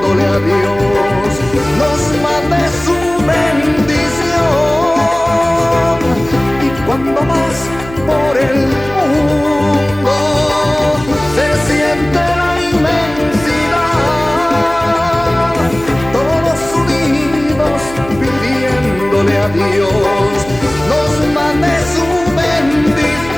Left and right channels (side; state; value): right; noise; hum, 15 dB below the sound